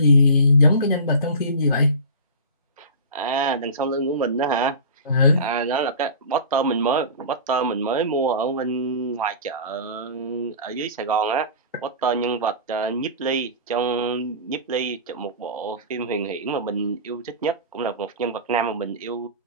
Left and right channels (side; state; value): both; inverted; correlation -0.33